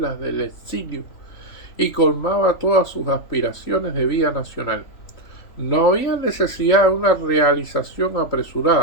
del exilio y colmaba todas sus aspiraciones de vida nacional. No había necesidad de una realización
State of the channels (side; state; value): right; late; 3.4 ms